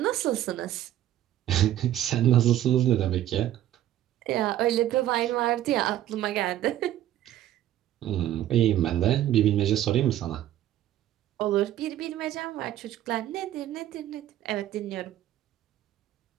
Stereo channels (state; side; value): quieter; left; 12.7 dB